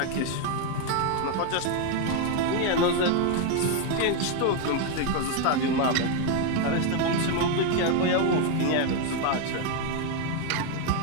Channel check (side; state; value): both; different; correlation 0.01